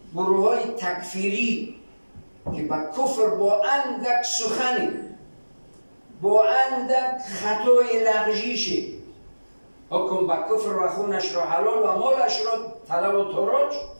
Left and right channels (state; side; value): inverted; both; correlation -1.00